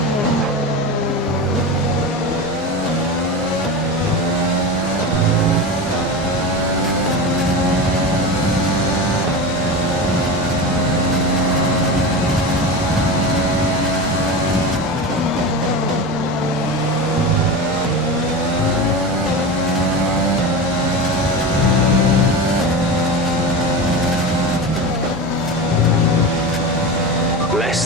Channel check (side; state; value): both; normal; correlation 0.24